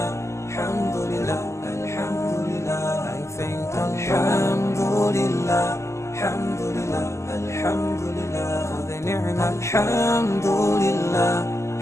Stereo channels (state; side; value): late; right; 0.13 ms